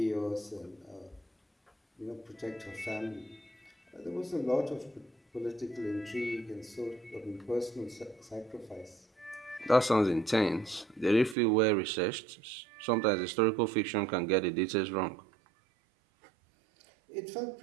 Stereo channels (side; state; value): left; drops out; at 11.4 s